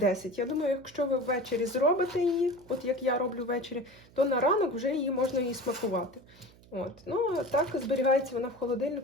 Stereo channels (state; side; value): noise; right; hum, 25 dB below the sound